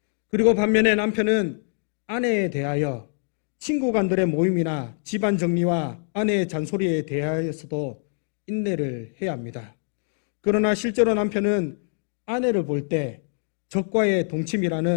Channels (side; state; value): right; silent; 62 dB below the other